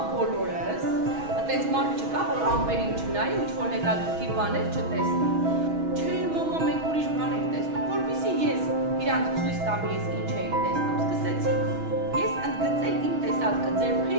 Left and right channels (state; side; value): late; left; 6.2 ms